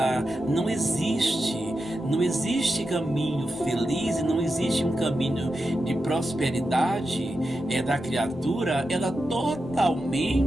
não existe caminho feliz e não existe um caminho de prosperidade da criatura. Ela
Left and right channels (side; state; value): both; normal; correlation 0.89